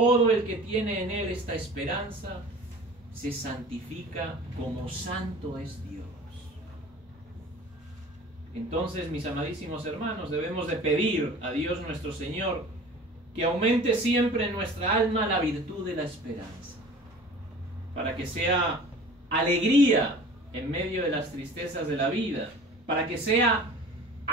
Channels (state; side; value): normal; both; correlation 0.42